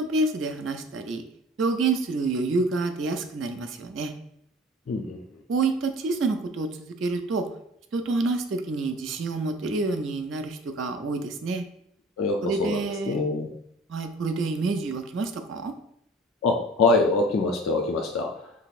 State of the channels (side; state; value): both; normal; correlation 0.44